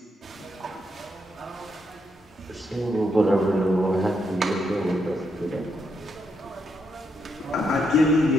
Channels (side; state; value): both; normal; correlation 0.79